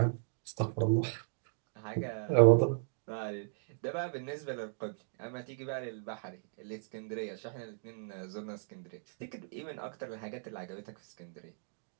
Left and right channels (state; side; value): silent; left; digital silence